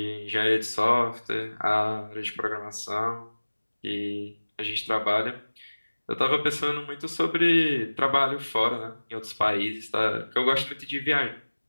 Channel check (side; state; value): both; inverted; correlation -1.00